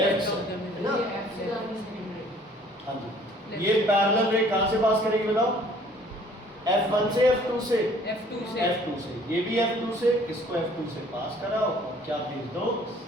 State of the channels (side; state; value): both; normal; correlation 0.56